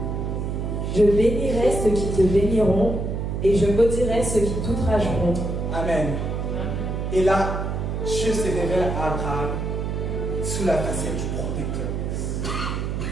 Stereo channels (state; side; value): noise; right; hum, 2 dB below the sound